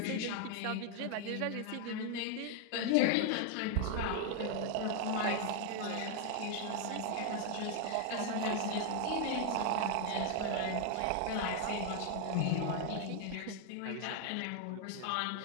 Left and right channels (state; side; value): different; both; correlation 0.00